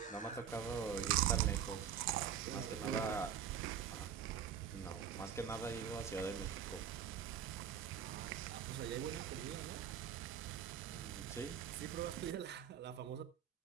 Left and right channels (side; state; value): left; quieter; 8.6 dB